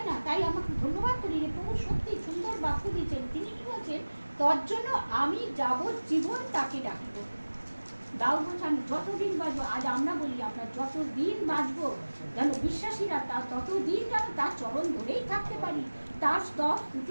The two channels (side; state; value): both; inverted; correlation -1.00